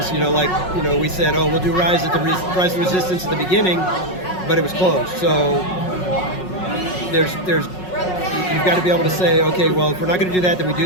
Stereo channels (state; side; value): late; right; 5.4 ms